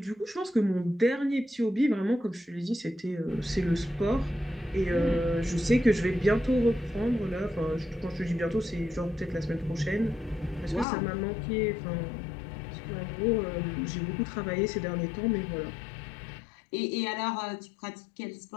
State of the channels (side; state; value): right; drops out; at 10.9 s